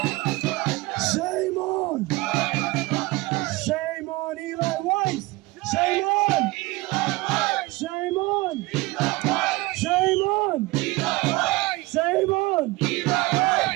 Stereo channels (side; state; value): left; quieter; 21.6 dB